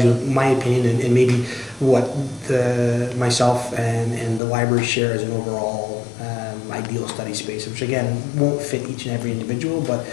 you with my opinion and maybe what myself and the library share as an overall ideal study space, which again won't fit each and every individual, but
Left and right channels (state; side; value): drops out; right; at 4.4 s